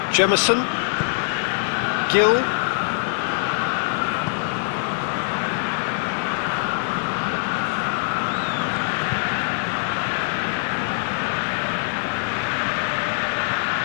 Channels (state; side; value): silent; right; digital silence